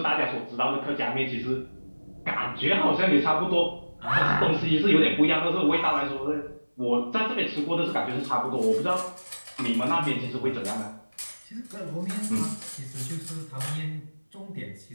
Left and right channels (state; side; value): inverted; both; correlation -1.00